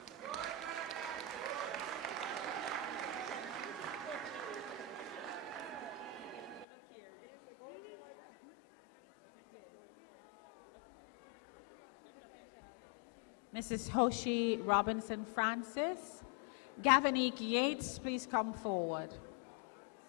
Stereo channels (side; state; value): right; drops out; at 6.7 s